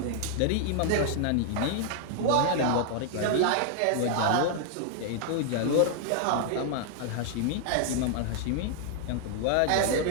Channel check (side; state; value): both; different; correlation 0.00